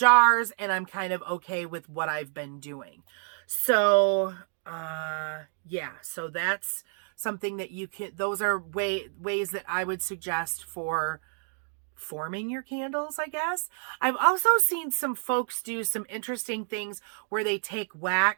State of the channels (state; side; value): silent; left; 58 dB below the other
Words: and I'm kind of okay with what I've been doing. So, yeah, so that's something that you can, those are ways that I would suggest for forming your candles, I guess. I've also seen some folks do some interesting things where they take